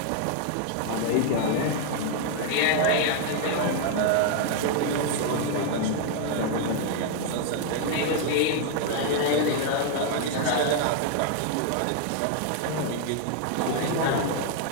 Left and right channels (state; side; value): different; both; correlation 0.00